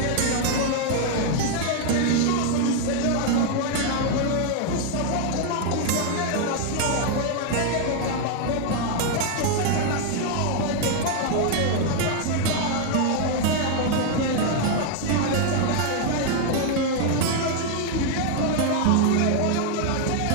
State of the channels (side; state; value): both; different; correlation 0.00